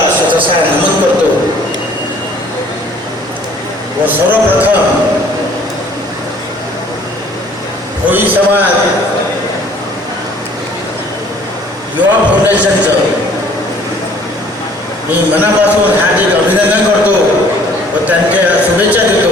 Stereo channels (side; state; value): both; normal; correlation 0.56